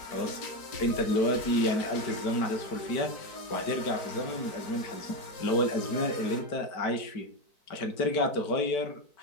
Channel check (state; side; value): late; right; 4.6 ms